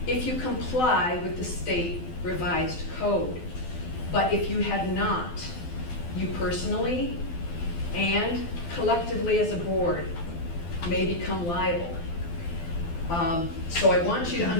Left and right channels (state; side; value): late; right; 12 ms